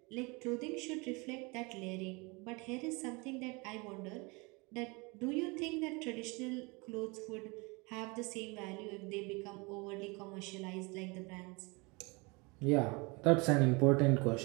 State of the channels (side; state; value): left; quieter; 27.8 dB